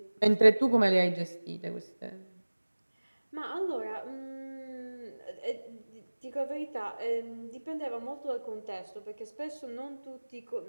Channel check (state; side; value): inverted; both; correlation -1.00